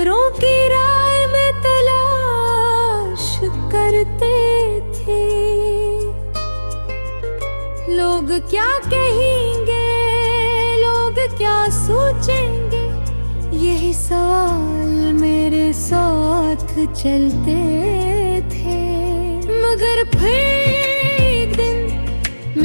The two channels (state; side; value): inverted; both; correlation -1.00